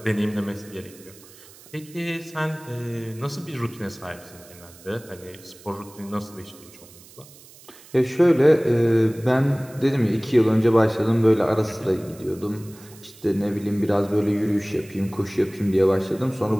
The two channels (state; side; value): noise; right; hiss, 22 dB below the sound